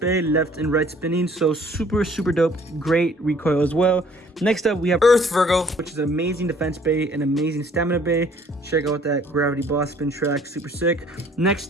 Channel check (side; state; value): both; normal; correlation 0.57